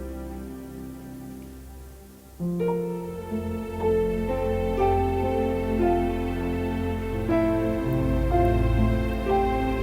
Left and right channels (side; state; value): both; identical; correlation 1.00